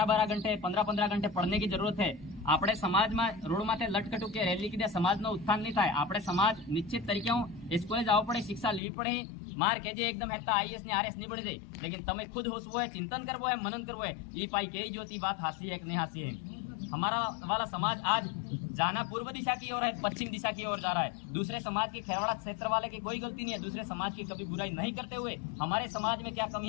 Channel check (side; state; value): right; drops out; at 8.8 s